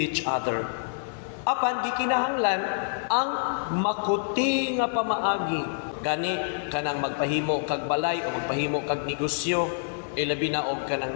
other. Apan gikinahanglan ang makuti nga pamaagi. Gani kanang magpahimo kag balay o magpahimo kag negosyo, ilabi na og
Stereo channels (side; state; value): right; silent; digital silence